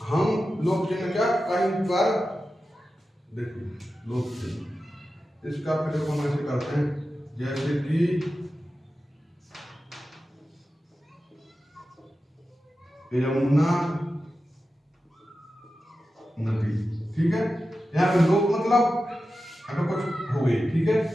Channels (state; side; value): normal; both; correlation 0.92